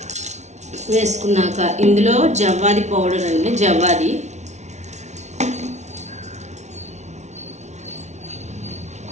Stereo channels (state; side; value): late; left; 0.33 ms